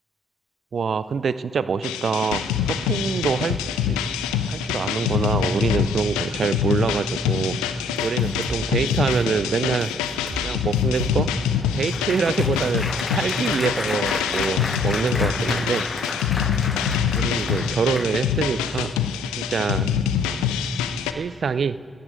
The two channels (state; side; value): normal; both; correlation 0.59